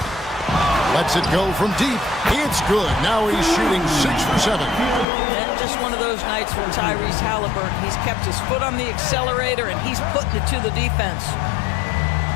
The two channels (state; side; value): drops out; right; at 5.1 s